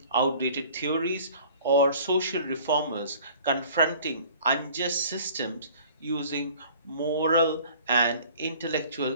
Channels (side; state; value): both; inverted; correlation -0.49